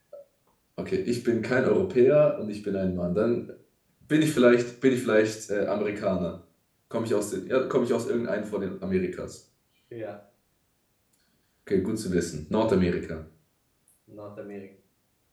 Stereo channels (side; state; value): both; identical; correlation 1.00